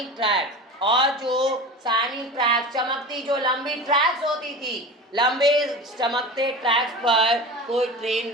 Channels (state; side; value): normal; both; correlation 0.32